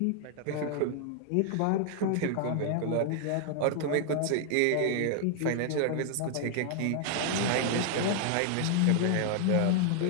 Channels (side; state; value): both; different; correlation 0.00